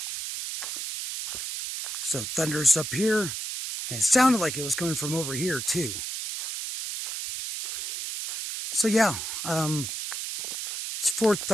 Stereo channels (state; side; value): noise; right; hiss, 5 dB below the sound